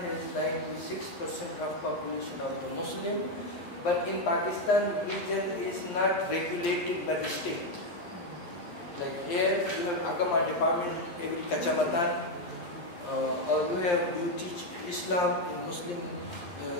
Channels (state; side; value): late; right; 11 ms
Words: 96% of population of the Muslim, but in Pakistan religion is not regulated by the state. Like here you have Agama department every kacamatan, or you teach Islam in Muslim